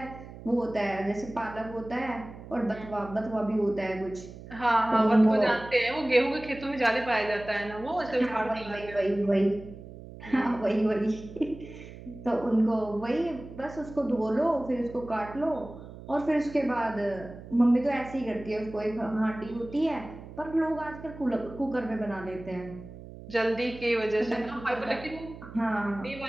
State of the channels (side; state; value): right; noise; hum, 15 dB below the sound